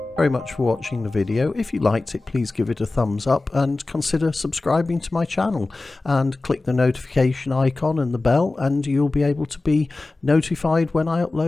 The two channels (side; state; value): right; quieter; 3.2 dB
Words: very much for watching the video. If you liked it, please give it a thumbs up and consider subscribing to my channel, and click the notification icon and the bell, and you'll be able to be notified when I